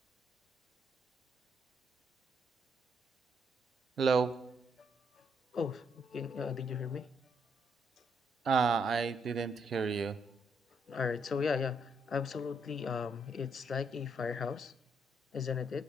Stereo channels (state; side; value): normal; both; correlation 0.74